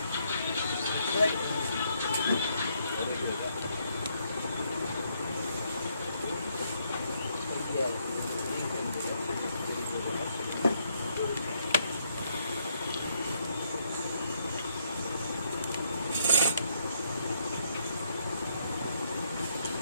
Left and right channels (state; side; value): inverted; both; correlation -0.72